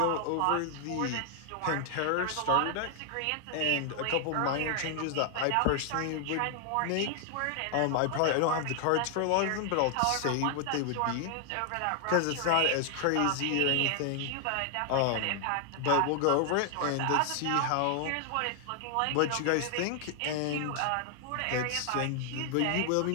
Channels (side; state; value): both; different; correlation 0.00